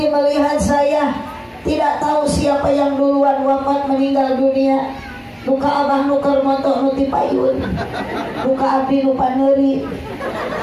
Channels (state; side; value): identical; both; correlation 1.00